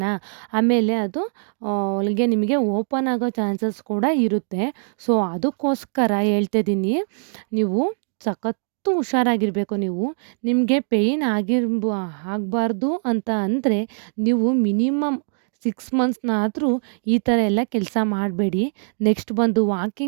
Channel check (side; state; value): left; silent; digital silence